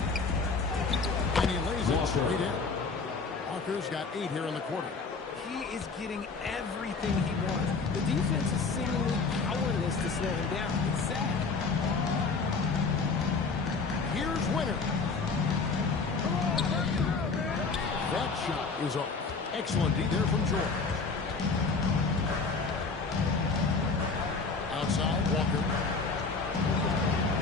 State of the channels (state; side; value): quieter; right; 4.4 dB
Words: straight in. Walker's got 8 here in the quarter. He is getting everything he wants. The defense is seemingly powerless to slow him down. It's sad. Here's Winner. That shot is off. Excellent D there from George. Outside, Walker.